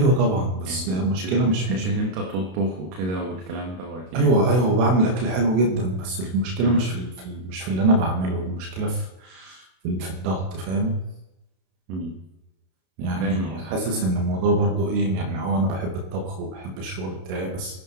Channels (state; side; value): late; left; 32 ms